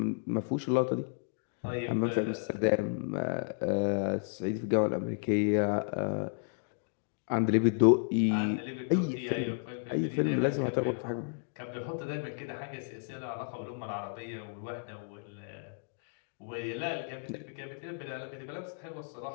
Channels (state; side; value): silent; right; digital silence